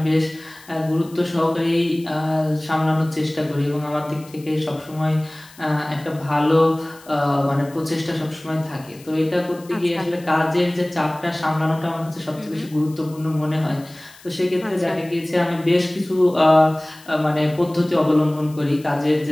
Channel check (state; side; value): noise; left; hiss, 23 dB below the sound